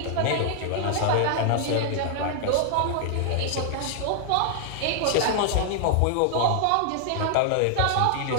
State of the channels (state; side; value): different; both; correlation -0.01